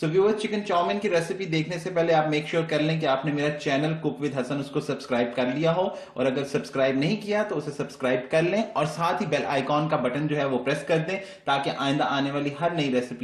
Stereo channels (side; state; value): both; identical; correlation 1.00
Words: viewers, chicken chow mein की रेसिपी देखने से पहले आप मेक श्योर कर लें कि आपने मेरा चैनल कुक विद हसन उसको सब्सक्राइब कर लिया हो, और अगर सब्सक्राइब नहीं किया तो उसे सब्सक्राइब कर लें और साथ ही बेल आइकॉन का बटन जो है वो प्रेस कर दें ताकि आइंदा आने वाली हर नई